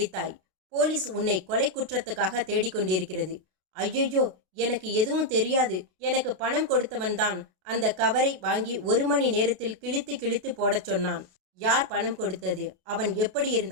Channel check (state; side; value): late; left; 33 ms